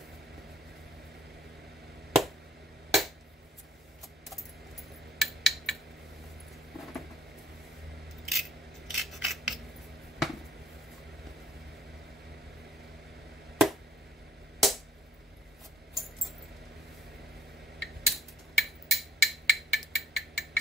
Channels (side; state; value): both; normal; correlation 0.63